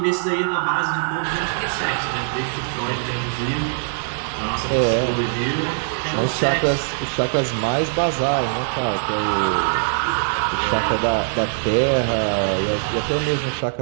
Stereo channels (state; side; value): silent; left; digital silence